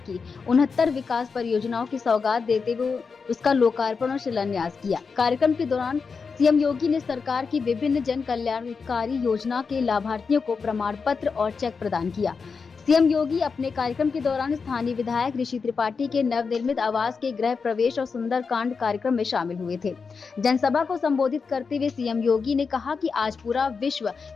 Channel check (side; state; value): right; quieter; 5.2 dB